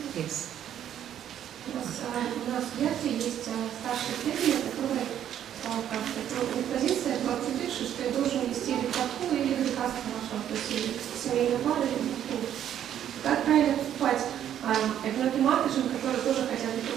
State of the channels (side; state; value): left; quieter; 10.3 dB